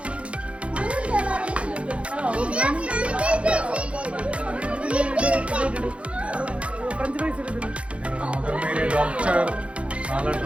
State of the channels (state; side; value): late; left; 0.061 ms